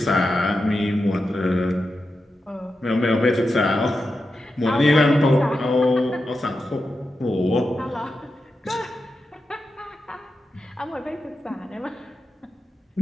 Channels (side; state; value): both; normal; correlation 0.89